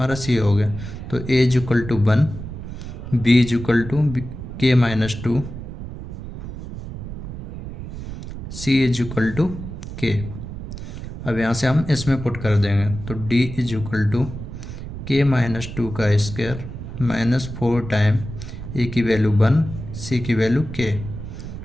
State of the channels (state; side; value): noise; right; rumble, 9 dB below the sound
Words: सी हो गया। तो a is equal to 1, b is equal to k minus 2, c is equal to k. अब यहाँ से हम इसमें पुट कर देंगे, तो d is equal to k minus 2 का स्क्वायर माइनस 4 टाइम ए की वैल्यू 1, सी की वैल्यू के